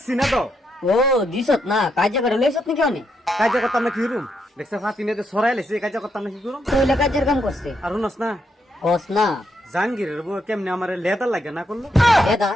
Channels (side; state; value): both; normal; correlation 0.79